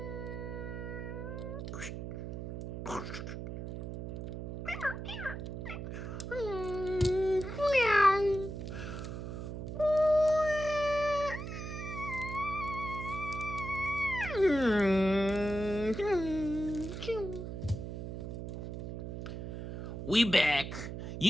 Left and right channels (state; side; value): noise; right; hum, 7 dB below the sound